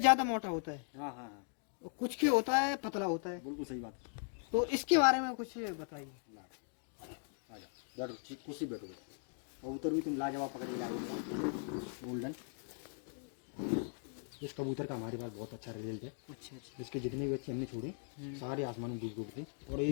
मोटा होता है, हाँ हाँ हाँ, और कुछ के होता है पतला होता है। बिल्कुल सही बात। तो इसके बारे में कुछ बताइए। आ जाओ, बैठो, ठीक कुर्सी बैठो। कबूतर भी तुम लाजवाब पकड़ के लाए गोल्डन। इस कबूतर का हमारे पास बहुत अच्छा रिजल्ट है। अच्छा अच्छा इसके जितने भी बच्चे हमने छोड़े सारे आसमान में डूब थे, और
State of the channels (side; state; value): right; silent; 52 dB below the other